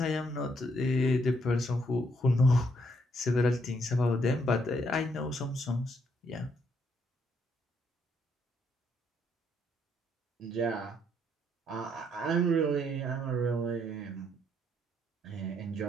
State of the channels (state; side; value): normal; both; correlation 0.72